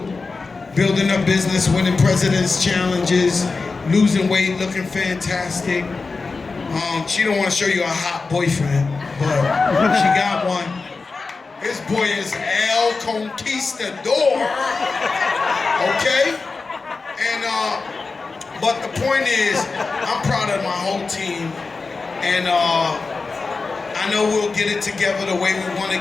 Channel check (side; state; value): right; quieter; 4.1 dB